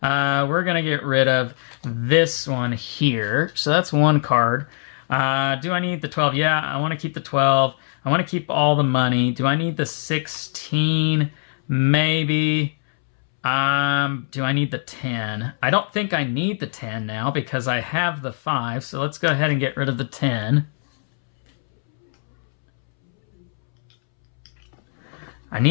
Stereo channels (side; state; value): right; silent; 65 dB below the other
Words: We're going to get rid of this one here. So that's 1 card. Do I need the 12? Yeah, I want to keep the 12. I want to keep all the money. Do I need the 16? Maybe. Do I need the 10? I don't think I need the 10 now because I have the 5. So let's go ahead and get rid of the 10. I